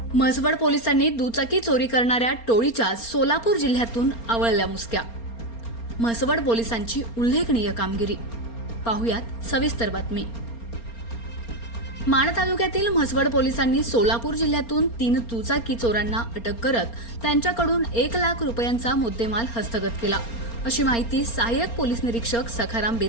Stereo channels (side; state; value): right; late; 4.3 ms